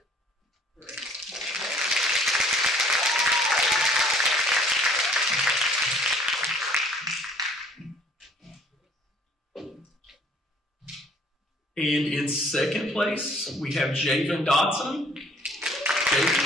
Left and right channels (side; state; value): both; normal; correlation 0.56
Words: And in second place, we have Javen Dodson.